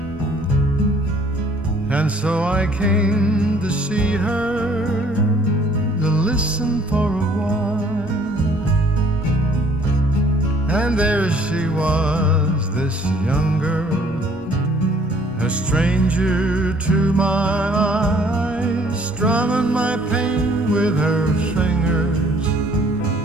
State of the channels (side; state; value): both; normal; correlation 0.58